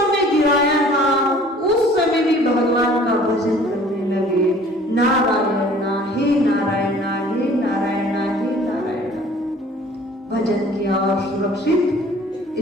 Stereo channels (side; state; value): both; normal; correlation 0.52